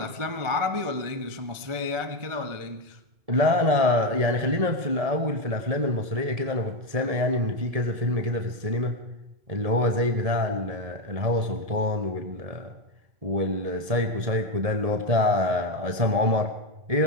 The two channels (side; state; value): left; late; 1.8 ms